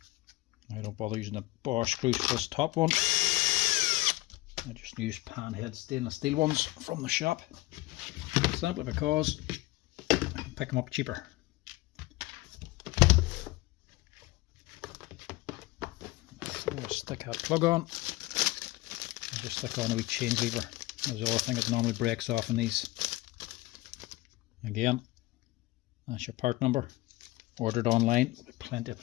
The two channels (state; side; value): quieter; right; 19.5 dB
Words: I don't bother using the Bosch screws for this top one. I just use panhead stainless steel ones from the shop, simply because I can pick them up cheaper. Before I stick that plug on, I just stick on a wee change lever. That's the other thing that normally breaks off in these. Again, that's your part number. Ordered online. Plenty of